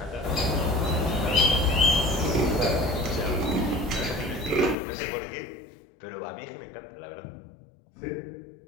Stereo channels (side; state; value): right; drops out; at 4.8 s